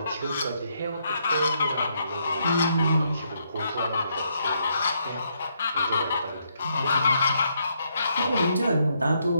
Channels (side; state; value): both; inverted; correlation -0.75